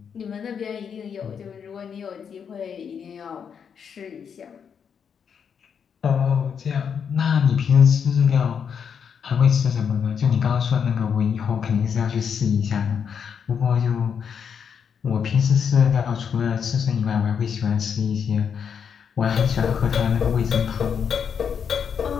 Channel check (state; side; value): quieter; right; 7.1 dB